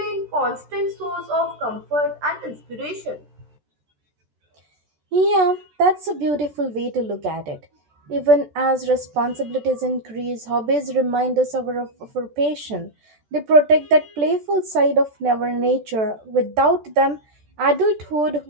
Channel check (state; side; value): late; left; 14 ms